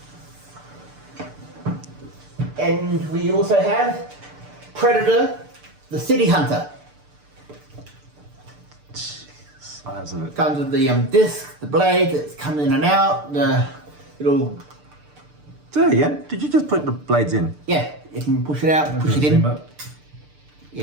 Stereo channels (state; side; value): late; left; 6.8 ms